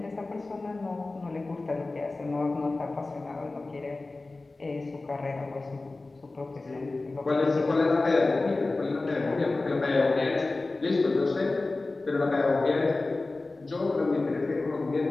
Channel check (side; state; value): right; quieter; 3.3 dB